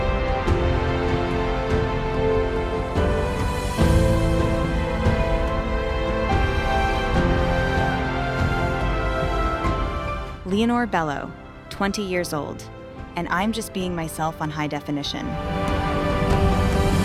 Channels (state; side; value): identical; both; correlation 1.00